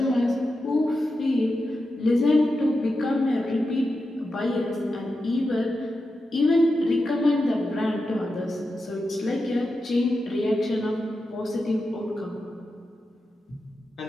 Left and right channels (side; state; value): both; normal; correlation 0.90